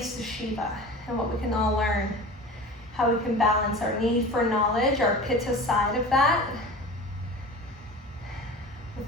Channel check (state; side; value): normal; both; correlation 0.36